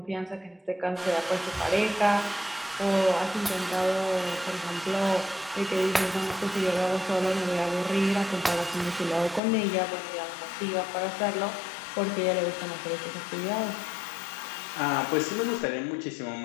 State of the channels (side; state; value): right; drops out; at 9.4 s